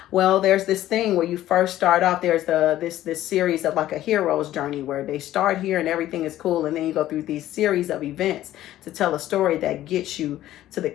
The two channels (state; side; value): quieter; right; 13.8 dB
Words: Well, there's this thing where you first start off. There's this series of like a hero's journey where they start here and everything is cool. And then you go through these series of events to tell a story that gets you to the